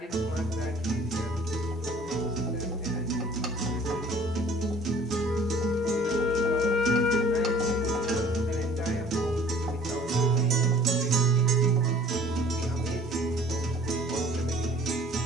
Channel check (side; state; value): both; normal; correlation 0.51